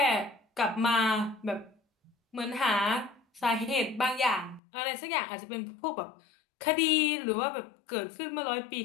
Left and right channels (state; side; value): drops out; right; at 4.6 s